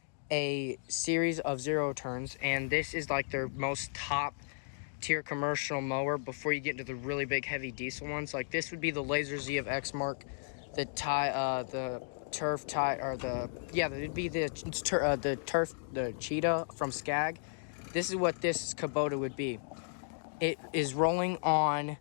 a series of zero turns, and this is like their most top tier commercial mower before you get into the really big heavy diesel ones. Like this would be the Laser Z of Exmark, the Turf Tie, or it'd be the Turf, the Cheetah from Skag. This is what this Kubota would be. It is rolling on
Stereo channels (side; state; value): right; silent; digital silence